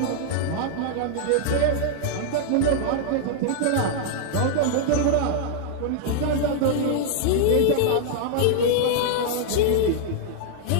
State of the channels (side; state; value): both; different; correlation -0.01